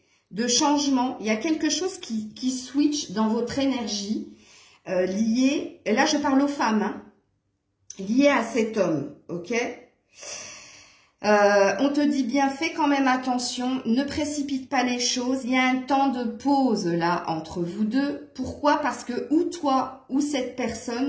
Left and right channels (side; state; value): both; identical; correlation 1.00